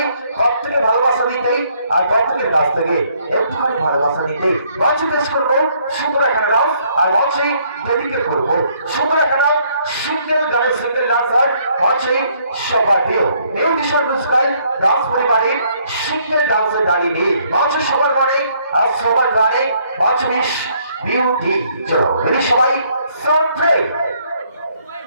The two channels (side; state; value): both; inverted; correlation -0.67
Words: প্রত্যেকে ভালোবাসা দিতে আর প্রত্যেকের কাছ থেকে একটুখানি ভালোবাসা দিতে মঞ্চে পেশ করবো সুন্দর একটা ডান্স আর মঞ্চে ডেডিকেট করবো সুন্দর একটা সিঙ্গেল গানের সিঙ্গেল ডান্সার মঞ্চে সবাইও মিউজিশিয়ান মিউজিক্যাল ডান্স পরিবারের সিঙ্গেল ডান্সের দাঁড়িয়ে মঞ্চে সবার মানে আর সবার গানে মঞ্চ মিস বিউটি চলো রেডি সবাই সাউন্ড প্লে